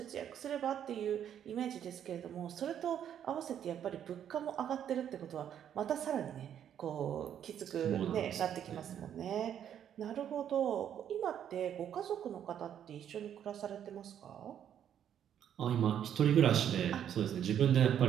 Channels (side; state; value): left; quieter; 9.6 dB